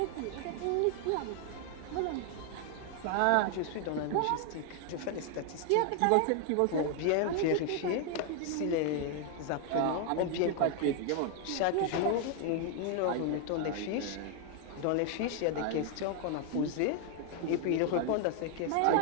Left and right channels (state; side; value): different; both; correlation 0.00